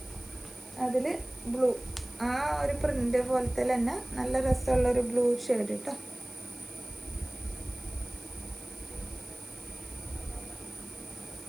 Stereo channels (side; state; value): right; noise; hiss, 19 dB below the sound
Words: അതിൽ ബ്ലൂ, ആ ഒരു പ്രിന്റ് പോലത്തെ തന്നെ നല്ല രസമുള്ളൊരു ബ്ലൂ ഷെയ്ഡ് കേട്ടോ.